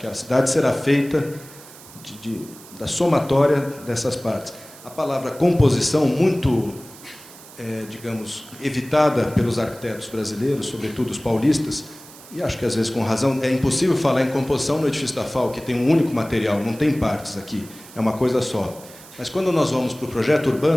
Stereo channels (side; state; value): right; noise; hiss, 19 dB below the sound